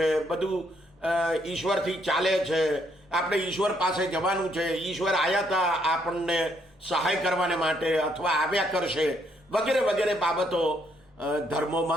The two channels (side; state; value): both; normal; correlation 0.72